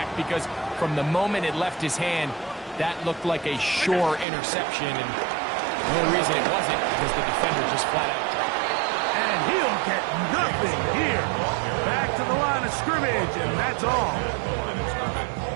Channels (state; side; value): drops out; left; at 4.2 s